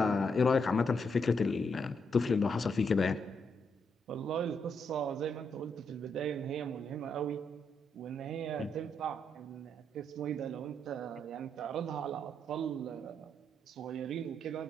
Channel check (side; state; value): both; normal; correlation 0.78